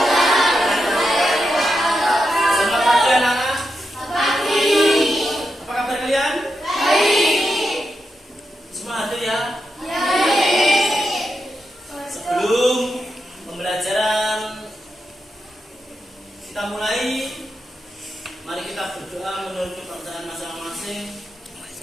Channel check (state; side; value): normal; both; correlation 0.86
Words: Selamat pagi anak-anak. Apa kabar kalian? Baik. Semua hadir ya? Sebelum pembelajaran kita mulai, mari kita berdoa menurut kepercayaan masing-masing.